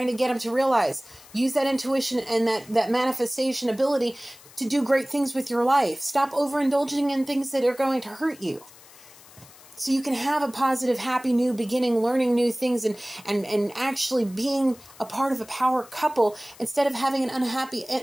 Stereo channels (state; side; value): noise; left; hiss, 22 dB below the sound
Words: to get them to realize, use that intuition and that manifestation ability to do great things with your life. Stop overindulging in things that are going to hurt you. so you can have a positive, happy new beginning, learning new things, and actually being a part of a power couple instead of having an unhappy